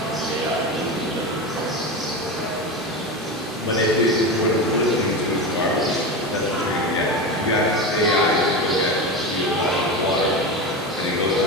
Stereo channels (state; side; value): normal; both; correlation 0.22